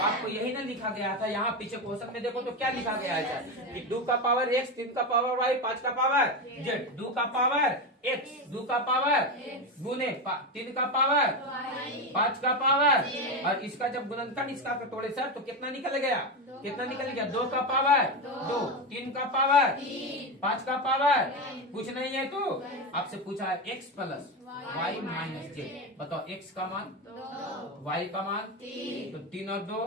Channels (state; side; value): normal; both; correlation 0.15